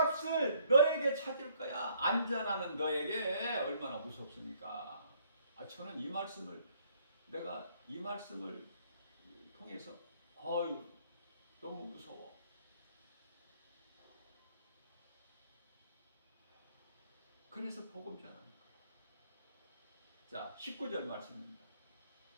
너에게 찾을 거야. 안전하는 너에게 얼마나 무섭습니까? 저는 이 말씀을 내가 이 말씀을 통해서 너무 무서워. 그래서 복음 전합니다. 자, 19절 말씀입니다.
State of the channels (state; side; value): inverted; both; correlation -0.65